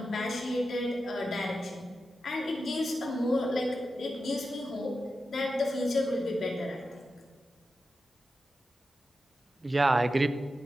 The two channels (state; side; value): normal; both; correlation 0.90